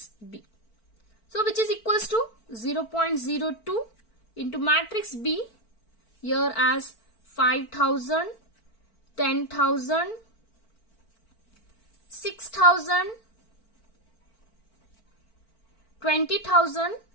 B. So which is equals to 0.02 into matrix B here as 5,000, 10,000, 6,000, 20,000,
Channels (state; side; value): late; right; 4.5 ms